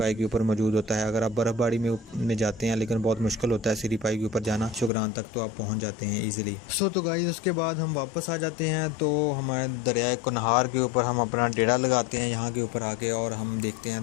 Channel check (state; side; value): drops out; right; at 4.9 s